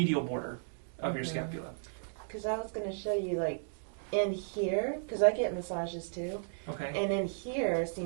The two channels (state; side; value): silent; left; digital silence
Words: border of your scapula. Because I was going to show you like in here, because I get massages too. Okay. And in here